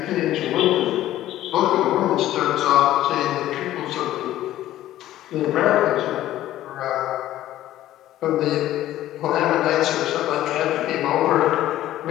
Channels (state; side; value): quieter; right; 13.8 dB